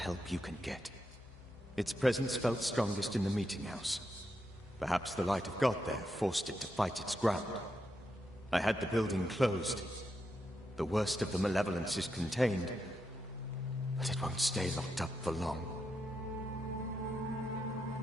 you can get. Its presence felt strongest in the meeting house. Perhaps the light of God there forced it to fight its ground. I had the building closed. The worst of the malevolence is contained, but it won't stay locked up for long.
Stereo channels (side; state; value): left; noise; hum, 22 dB below the sound